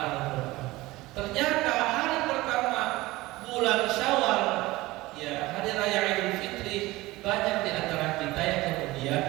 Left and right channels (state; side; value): quieter; left; 19.5 dB